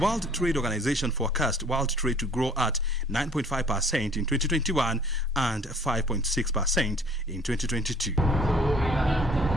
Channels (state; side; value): normal; both; correlation 0.56